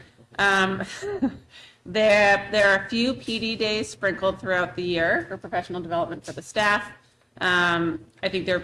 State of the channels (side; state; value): both; identical; correlation 1.00